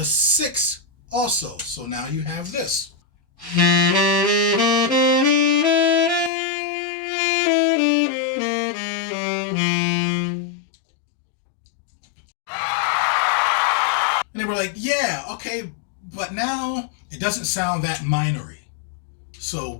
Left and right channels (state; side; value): drops out; right; at 6.3 s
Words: 6 also. So now you have this. And they were like, yeah, okay, but now it doesn't sound that minory. So